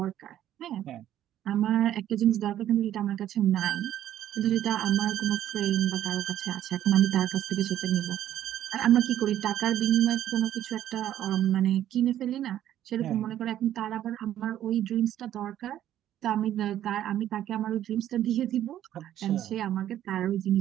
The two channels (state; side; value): quieter; left; 11.8 dB